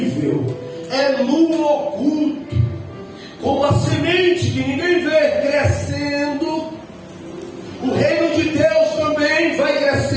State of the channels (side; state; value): both; identical; correlation 1.00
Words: é no oculto, como a semente que ninguém vê crescendo. O reino de Deus também vai